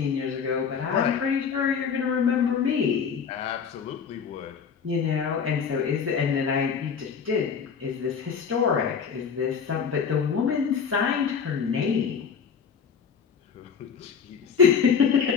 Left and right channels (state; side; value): quieter; right; 6.5 dB